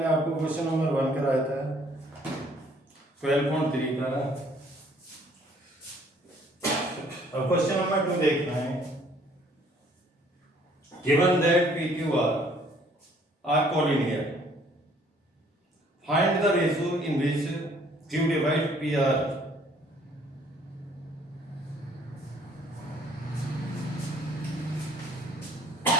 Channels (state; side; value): normal; both; correlation 0.60